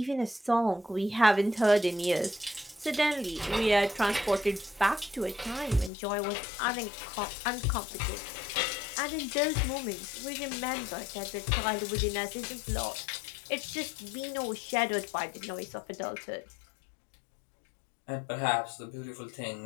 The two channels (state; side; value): drops out; right; at 5.9 s